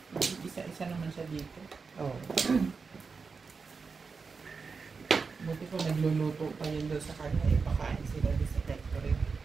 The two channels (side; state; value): left; quieter; 4.9 dB